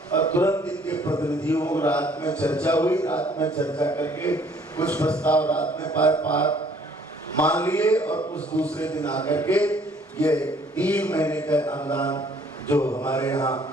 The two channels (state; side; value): normal; both; correlation 0.60